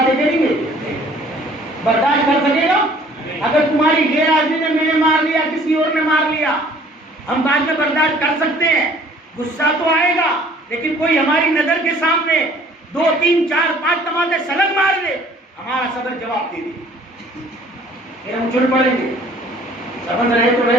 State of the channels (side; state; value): both; normal; correlation 0.55